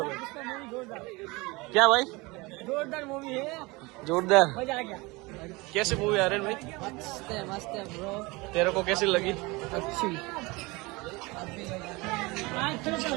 क्या भाई जोरदार मूवी है जोरदार मजा आ गया कैसी मूवी आ रही है भाई मस्त है ब्रो तेरे को कैसी लगी अच्छी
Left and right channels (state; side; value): quieter; left; 24.3 dB